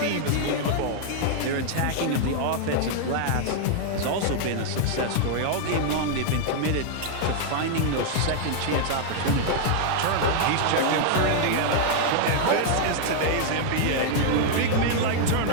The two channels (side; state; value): both; different; correlation 0.00